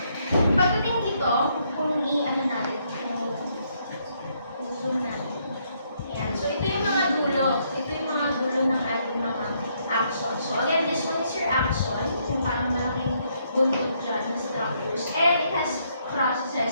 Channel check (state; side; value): inverted; both; correlation -0.73